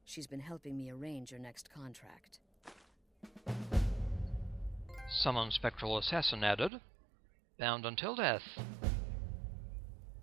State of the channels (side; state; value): left; drops out; at 6.7 s